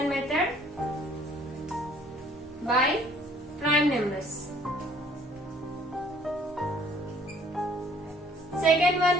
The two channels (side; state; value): both; normal; correlation 0.58